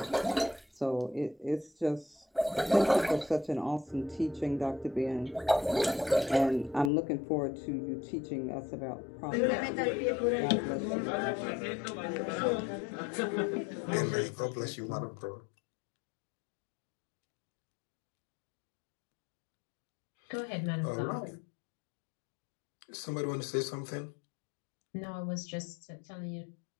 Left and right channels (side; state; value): right; drops out; at 6.9 s